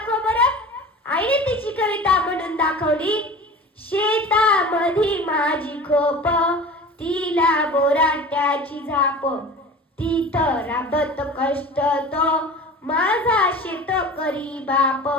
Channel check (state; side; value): normal; both; correlation 0.38